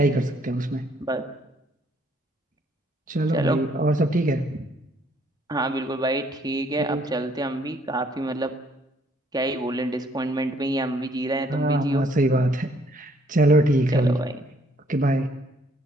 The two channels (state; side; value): normal; both; correlation 0.65